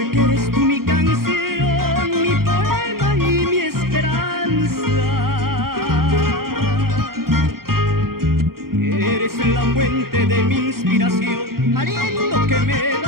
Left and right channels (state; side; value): late; left; 0.93 ms